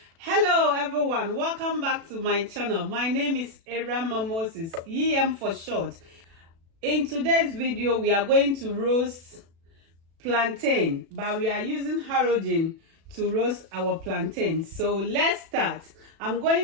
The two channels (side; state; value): left; late; 36 ms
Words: Hello everyone, welcome back to my channel. My name is Erama Moses, EM for short. In today's video, we are going to roast plantain, but we are using halogen to roast our plantain. So let's start. I'm